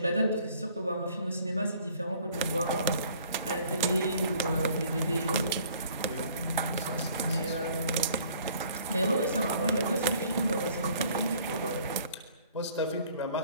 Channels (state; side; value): inverted; both; correlation -0.57